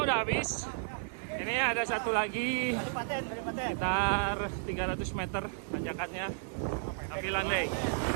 udah habis. Ini ada satu lagi sekitar 300 meter tanjakannya, tapi landai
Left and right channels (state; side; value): silent; left; 56 dB below the other